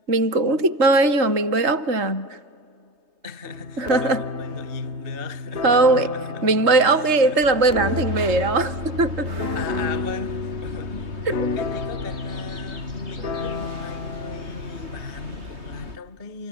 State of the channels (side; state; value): left; late; 3.2 ms